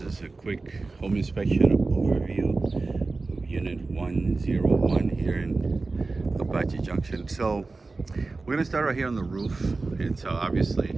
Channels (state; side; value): quieter; left; 3.7 dB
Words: is a quick home inspection overview of Unit 101 here in Apache Junction. So we're gonna start right here on the roof. It's